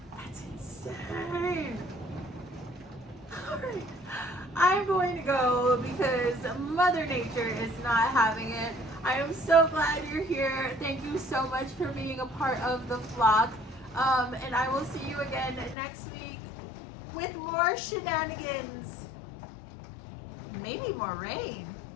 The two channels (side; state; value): right; drops out; at 15.8 s